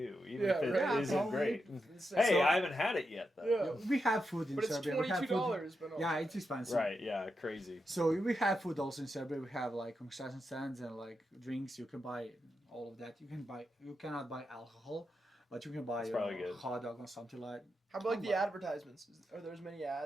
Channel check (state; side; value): normal; both; correlation 0.86